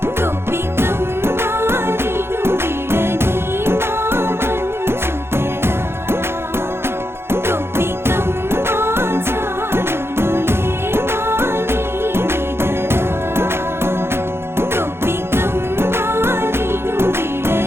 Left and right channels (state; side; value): late; left; 0.12 ms